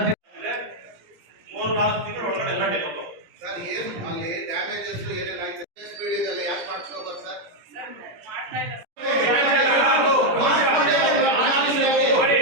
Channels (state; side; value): late; left; 17 ms